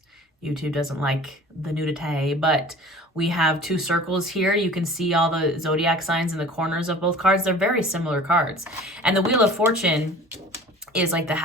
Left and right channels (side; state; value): both; normal; correlation 0.44